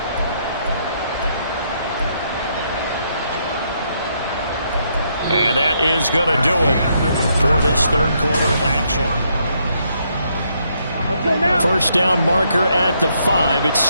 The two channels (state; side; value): inverted; both; correlation -0.74